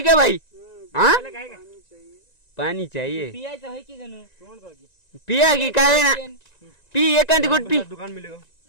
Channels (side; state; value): right; late; 1.9 ms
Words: क्या भाई? हाँ पानी चाहिए। पाणी चाहिए. पियायचं आहे की गणू? तोंड बघ पिया की काय ना पी एखादी गुट पी. दुकान मिलेगा